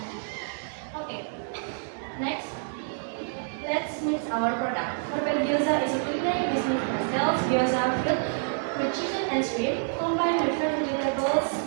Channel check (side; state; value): left; silent; digital silence